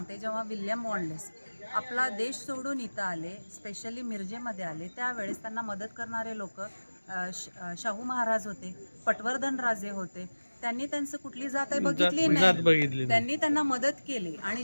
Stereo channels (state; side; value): inverted; both; correlation -1.00